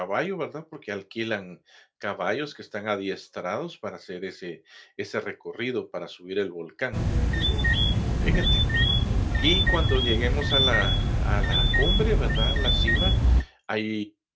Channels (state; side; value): identical; both; correlation 1.00